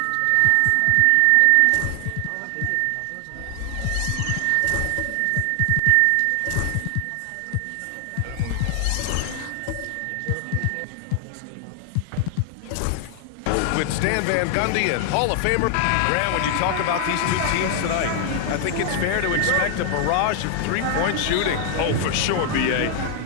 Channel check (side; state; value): both; different; correlation 0.00